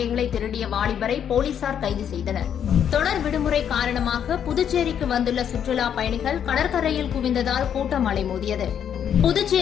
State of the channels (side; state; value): right; quieter; 8.8 dB